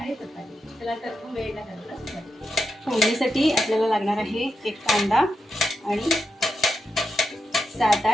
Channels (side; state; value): both; normal; correlation 0.87